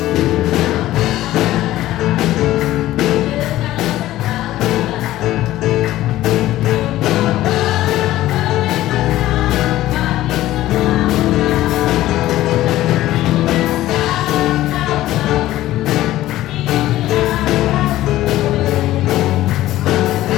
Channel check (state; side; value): quieter; right; 15.1 dB